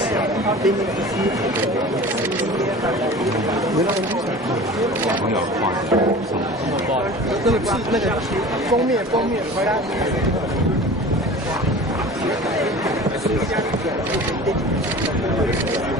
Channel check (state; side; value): normal; both; correlation 0.39